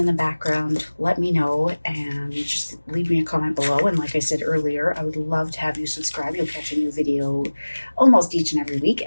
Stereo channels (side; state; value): both; inverted; correlation -1.00